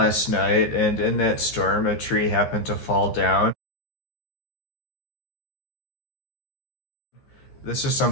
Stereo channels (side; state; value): right; late; 13 ms